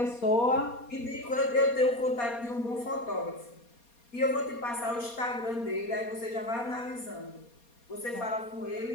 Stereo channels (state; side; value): late; right; 4.2 ms